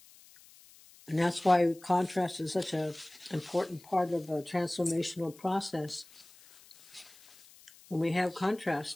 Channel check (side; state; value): left; noise; hiss, 24 dB below the sound